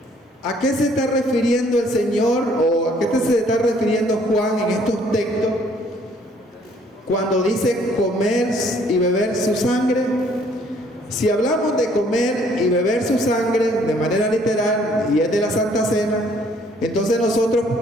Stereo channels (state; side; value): normal; both; correlation 0.62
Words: ¿A qué se está refiriendo el Señor o a qué se está refiriendo Juan en estos textos cuando dice comer y beber su sangre? Si hablamos de comer y beber su sangre de manera literal y es de la Santa Cena, entonces nosotros